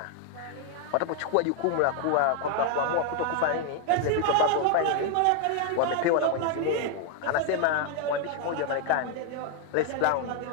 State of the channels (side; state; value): both; different; correlation 0.00